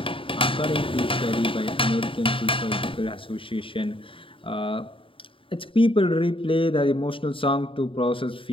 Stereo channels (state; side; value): late; right; 0.25 ms